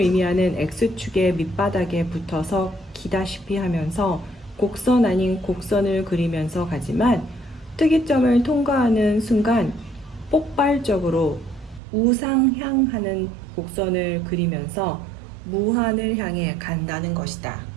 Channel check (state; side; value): drops out; left; at 11.8 s